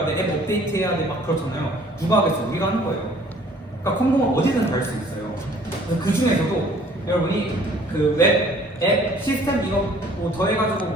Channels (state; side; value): normal; both; correlation 0.55